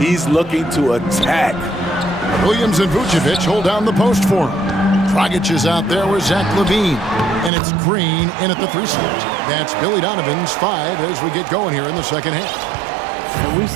looking to attack. Williams and Vucevic hold down the post for him. Dragic is out there with Zach LaVine. And it's Green in at the 3 slot. That's Billy Donovan's 5 as we get going here in the second half. And we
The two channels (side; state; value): left; drops out; at 7.5 s